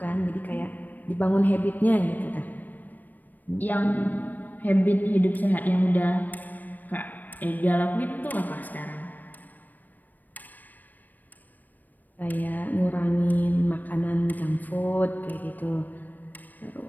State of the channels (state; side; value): late; right; 0.087 ms